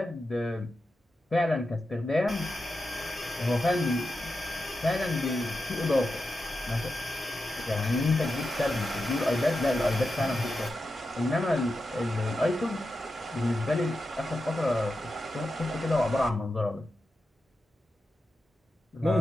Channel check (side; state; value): both; normal; correlation 0.90